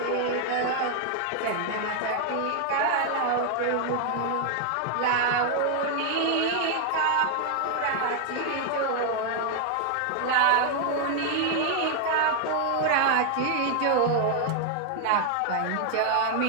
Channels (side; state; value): both; different; correlation 0.00